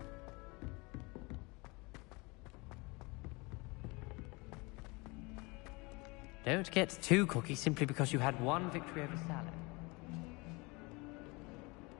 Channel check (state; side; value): quieter; right; 26.5 dB